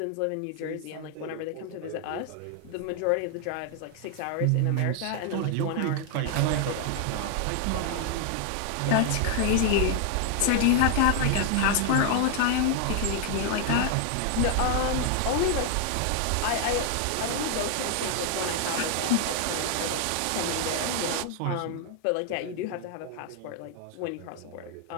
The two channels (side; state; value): both; different; correlation 0.00